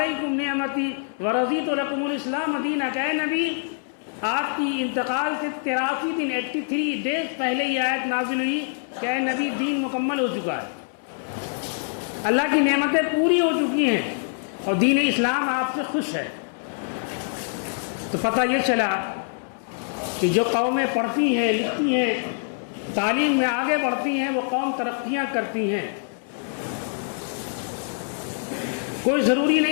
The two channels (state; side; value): silent; right; 62 dB below the other